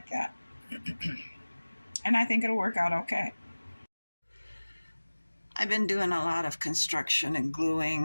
that. And I think it'll work out okay. I've been doing a lot of construction and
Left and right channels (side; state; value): both; inverted; correlation -1.00